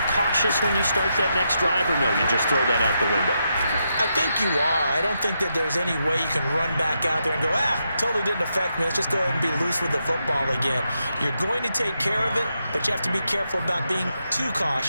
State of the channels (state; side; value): inverted; both; correlation -0.83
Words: cautious when you start that next drive, or no, you just throw that out the window? I think you are. I don't think that there's any way you can run back out there and go, totally didn't affect me. Let's just go ahead and be loose with the football again. You're going to take care of it, but you have to be careful about being too